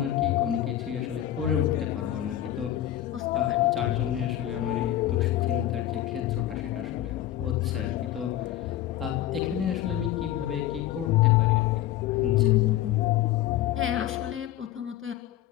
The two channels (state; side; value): quieter; right; 12.8 dB